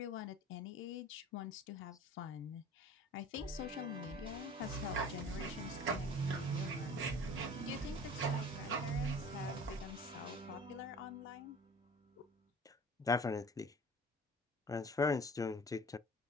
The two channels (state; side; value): normal; both; correlation 0.43